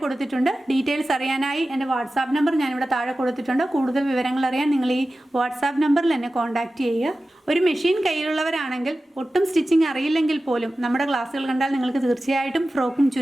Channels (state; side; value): normal; both; correlation 0.95